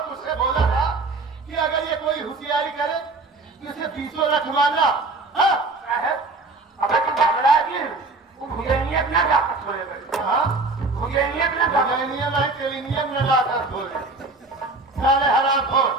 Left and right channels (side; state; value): left; quieter; 3.4 dB